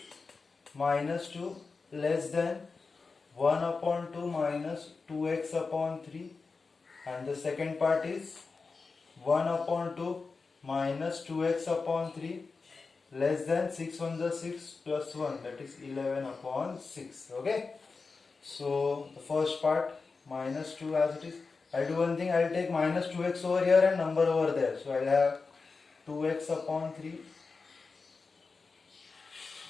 minus 2 less than 1 upon 2 minus 2x upon 3, and the second part is 1 upon 2 minus 2x upon 3 less than 6 1 the 6 plus 1, that is 11 upon 6. Okay, so the first part minus 2 as it is. I'll do one thing, I'll take minus 2x over here and number over there. So I'll have 2x upon 3,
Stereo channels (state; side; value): quieter; right; 4.4 dB